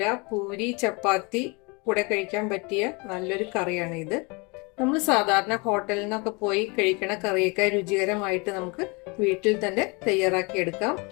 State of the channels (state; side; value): quieter; right; 29.3 dB